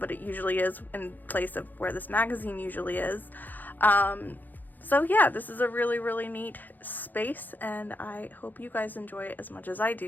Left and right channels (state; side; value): late; right; 0.086 ms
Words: it usually is in place of where this magazine usually is. So yeah, this is a really neat space, and I hope you guys enjoy it as much as I